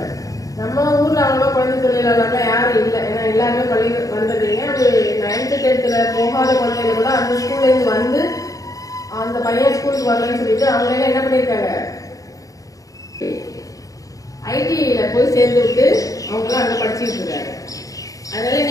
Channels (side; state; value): right; late; 0.17 ms